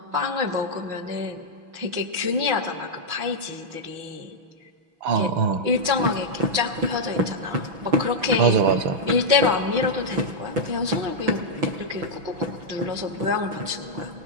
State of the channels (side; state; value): left; late; 6.1 ms